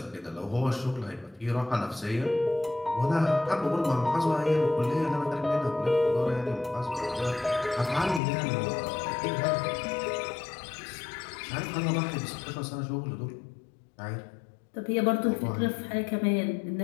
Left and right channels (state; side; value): drops out; right; at 8.2 s